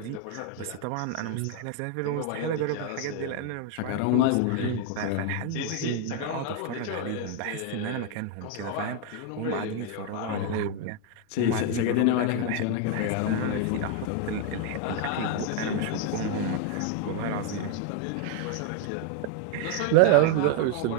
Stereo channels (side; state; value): both; different; correlation 0.00